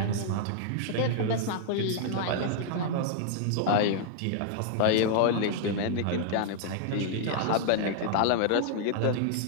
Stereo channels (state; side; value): different; both; correlation -0.01